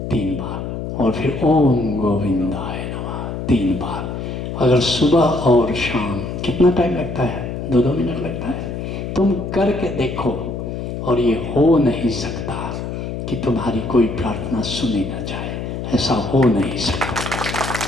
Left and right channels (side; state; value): left; noise; hum, 5 dB below the sound